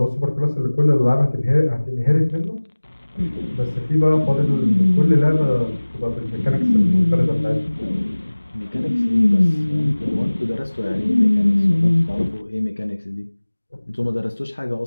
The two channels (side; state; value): both; inverted; correlation -1.00